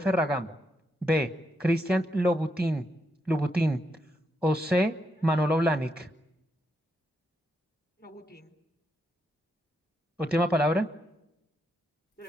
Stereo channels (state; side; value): normal; both; correlation 0.81